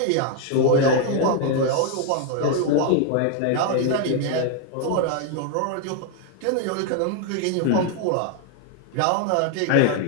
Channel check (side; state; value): both; different; correlation 0.00